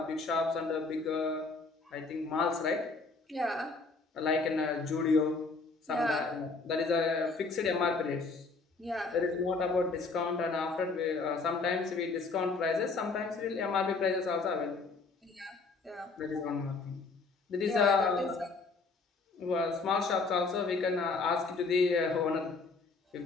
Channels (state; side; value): quieter; right; 4.0 dB